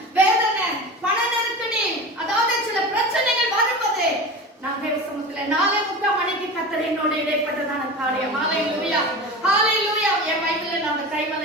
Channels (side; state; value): both; normal; correlation 0.30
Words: வேதனை, பண நெருக்கடி, அதாவது சில பிரச்சனைகள் வரும்போது நான் தேவ சமூகத்துல 4:30 மணிக்கு கர்த்தர் என்னோட இடைப்பட்டதான காரியம். Hallelujah. Hallelujah. என் பைபிள்ல நான் அந்த